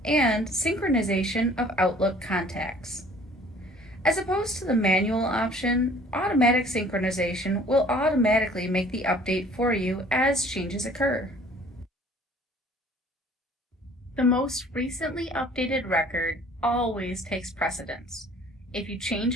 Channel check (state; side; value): normal; both; correlation 0.53